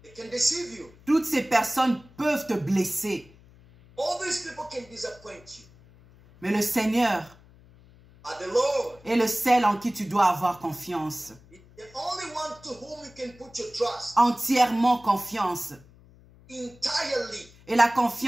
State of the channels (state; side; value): noise; left; hum, 25 dB below the sound